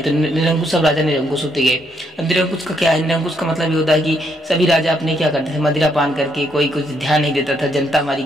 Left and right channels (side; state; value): both; normal; correlation 0.74